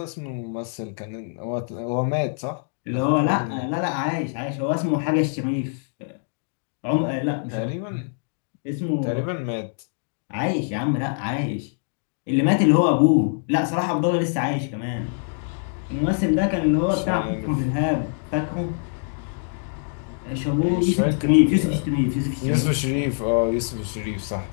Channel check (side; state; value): right; silent; digital silence